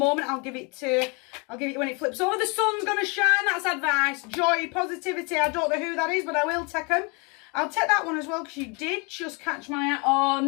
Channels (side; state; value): right; quieter; 31.4 dB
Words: I'll give it when it flips over. The sun's going to shine. That's advice. Joy, positivity. I don't know who that is, but I will take them. I'll take that one as well because you did just catch my eye. Oh,